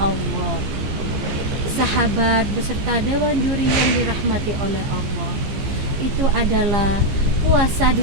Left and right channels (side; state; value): left; late; 15 ms